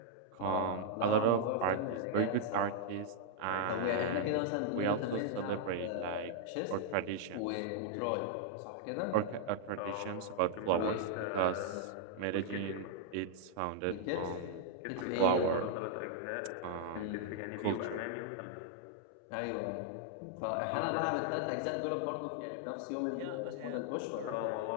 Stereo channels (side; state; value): both; different; correlation -0.01